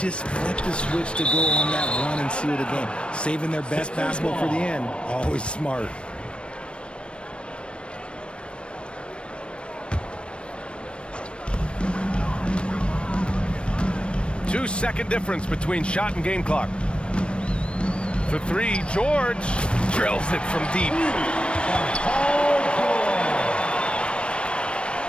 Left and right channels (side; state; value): right; late; 0.058 ms